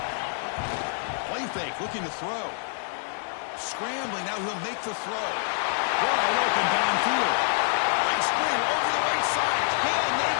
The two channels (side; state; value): right; silent; 60 dB below the other